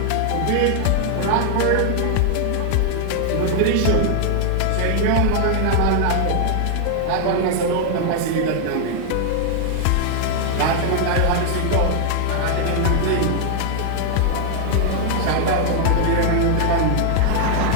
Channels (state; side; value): different; both; correlation 0.00